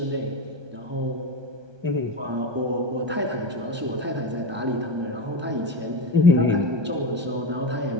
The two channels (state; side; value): late; left; 1.2 ms